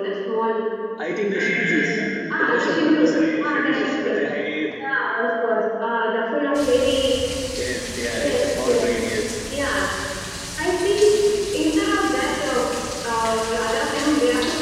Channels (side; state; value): both; identical; correlation 1.00